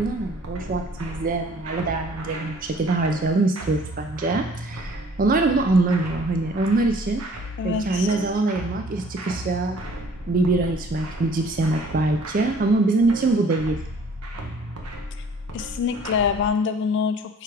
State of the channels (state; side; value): normal; both; correlation 0.54